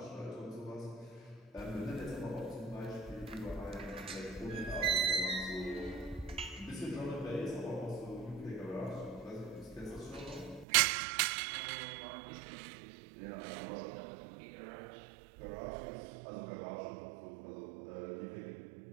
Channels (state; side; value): drops out; left; at 10.7 s